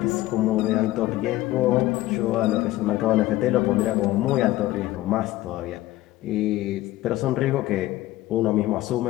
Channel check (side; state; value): right; quieter; 16.4 dB